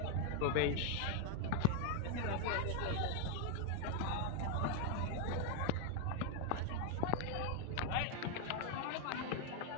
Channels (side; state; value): both; different; correlation 0.01